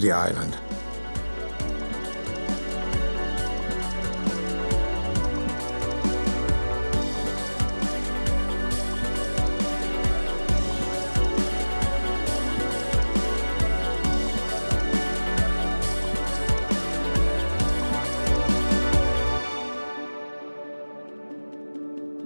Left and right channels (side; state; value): both; inverted; correlation -1.00